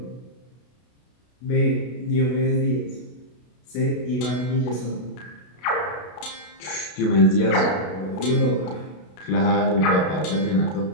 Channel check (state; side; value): late; right; 32 ms